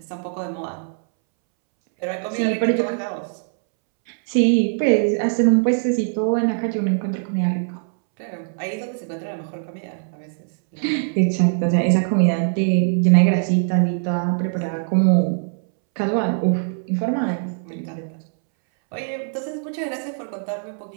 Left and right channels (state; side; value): silent; left; 64 dB below the other